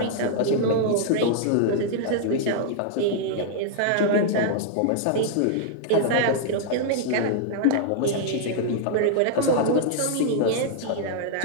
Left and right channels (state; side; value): different; both; correlation -0.01